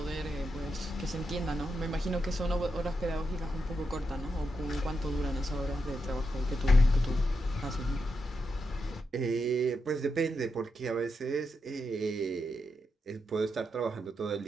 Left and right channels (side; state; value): both; normal; correlation 0.85